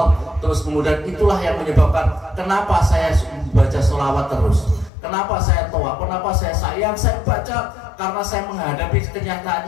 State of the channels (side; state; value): right; drops out; at 4.9 s